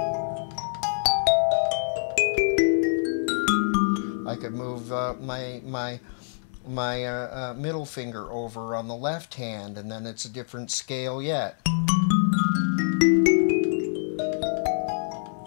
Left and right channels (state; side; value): silent; right; digital silence